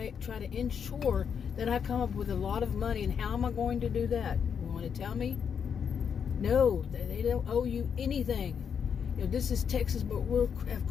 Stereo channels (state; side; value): quieter; right; 7.2 dB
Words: try to ensure that I come up with a lot of money. And how am I going to do that? You want to tell me? No, they don't owe you anything. This is Texas, but we have